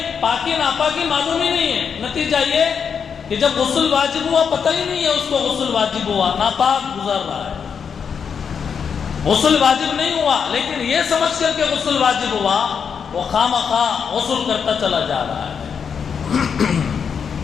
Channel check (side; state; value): right; quieter; 6.7 dB